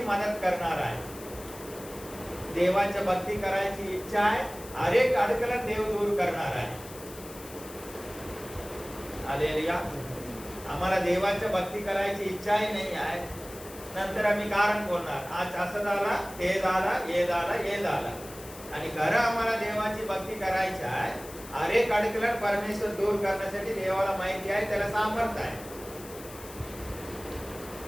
मदत करणार आहे. देवाच्या भक्ती करायची इच्छा आहे. अनेक अडचण देव दूर करणार आहे. हालेलुया. आम्हाला देवाच्या भक्ती करायची इच्छाही नाही आहे. नंतर आम्ही कारण बोलणार आज असं झाला, ते झाला, हे झाला, हे झाला. आणि खरं आम्हाला देवाची भक्ती करायची आहे. अनेक अडचण परमेश्वर दूर करण्यासाठी देवाला माहिती आहे, त्याला सामर्थ्य आहे.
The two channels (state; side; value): noise; left; hiss, 16 dB below the sound